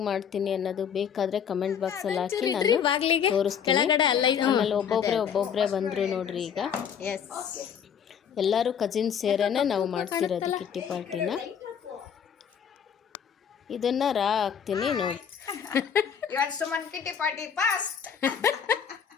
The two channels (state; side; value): quieter; right; 7.8 dB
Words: ಮಾಡ್ತೀನಿ ಅನ್ನೋದು ಬೇಕಾದರೆ ಕಮೆಂಟ್ ಬಾಕ್ಸಲ್ಲಿ ಹಾಕಿ ನಾನು ತೋರಿಸ್ತೀನಿ. ಆಮೇಲೆ ಒಬ್ಬೊಬ್ಬರೇ ಬಂದರು ನೋಡ್ರಿ. ಈಗ ಎಲ್ಲರೂ ಕಜಿನ್ಸ್ ಸೇರೇನೆ ನಾವು ಮಾಡ್ತಿರೋದು ಕಿಟ್ಟಿ ಪಾರ್ಟಿನ. ಇದನ್ನು ಹಾಕ್ತೀನಿ ನೋಡಿ.